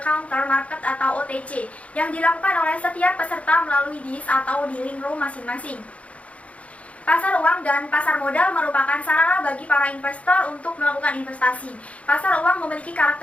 counter market atau OTC yang dilakukan oleh setiap peserta melalui dis atau dealing room masing-masing. Pasar uang dan pasar modal merupakan sarana bagi para investor untuk melakukan investasi. Pasar uang memiliki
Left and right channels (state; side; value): late; right; 0.064 ms